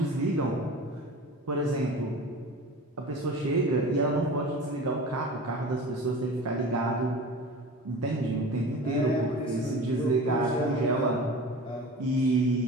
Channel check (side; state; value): both; normal; correlation 0.36